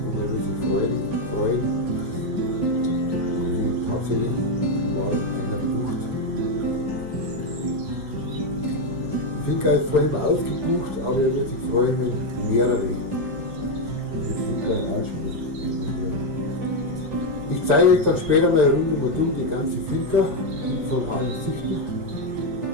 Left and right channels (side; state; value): left; late; 6.8 ms